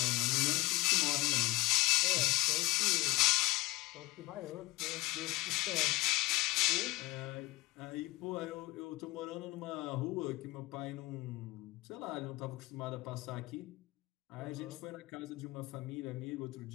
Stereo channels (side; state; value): right; quieter; 20.3 dB